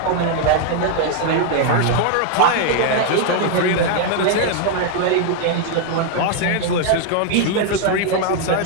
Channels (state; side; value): different; both; correlation 0.00